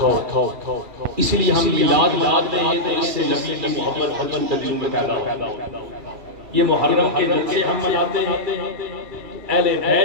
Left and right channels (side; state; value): left; late; 2.3 ms